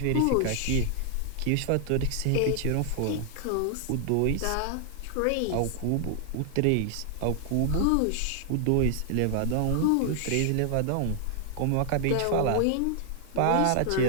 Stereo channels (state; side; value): different; both; correlation 0.00